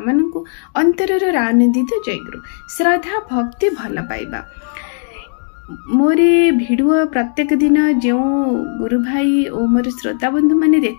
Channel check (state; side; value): silent; right; 60 dB below the other